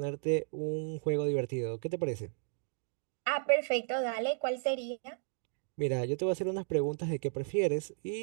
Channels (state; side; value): silent; left; digital silence